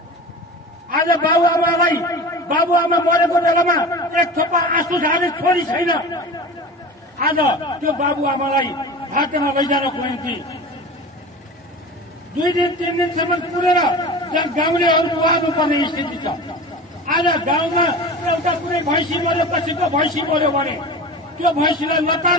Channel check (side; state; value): both; normal; correlation 0.33